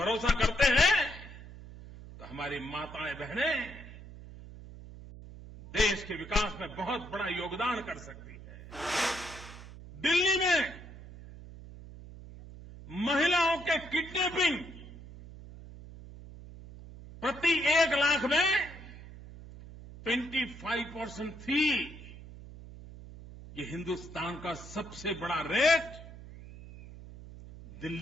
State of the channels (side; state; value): right; noise; hum, 15 dB below the sound